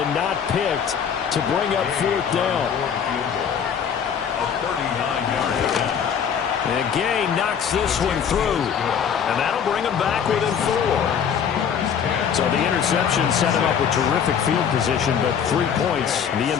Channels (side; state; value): right; quieter; 7.7 dB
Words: not picked to bring up 4th down. And Gay knocks this one through, and that'll bring him back within 4. So the interception set him up with terrific field position, but 3 points, the